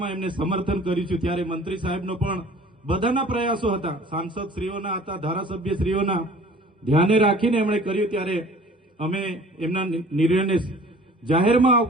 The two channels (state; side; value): normal; both; correlation 0.49